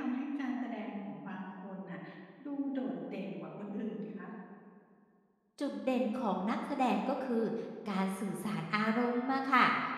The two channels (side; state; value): both; identical; correlation 1.00